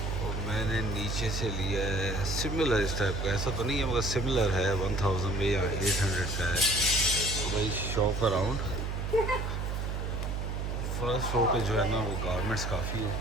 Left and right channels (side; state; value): right; noise; hum, 2 dB below the sound